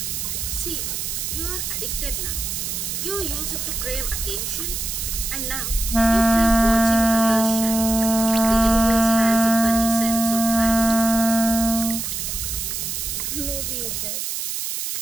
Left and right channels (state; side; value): noise; right; hiss, 4 dB below the sound